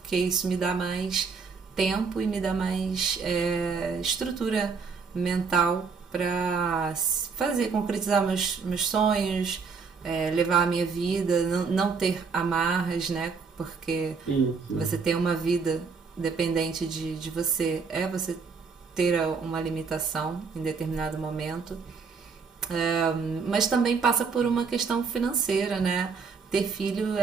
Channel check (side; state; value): left; quieter; 5.2 dB